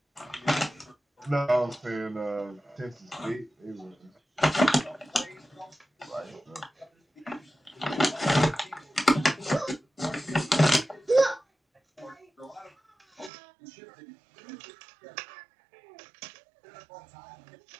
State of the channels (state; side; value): drops out; left; at 13.3 s